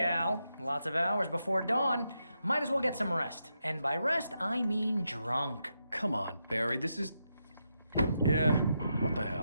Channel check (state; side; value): inverted; both; correlation -0.84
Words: Al. Lots of hours before dawn. Might as well get some rest. And by rest, I mean drunk. Come on, Barry, this is... Yeah, what the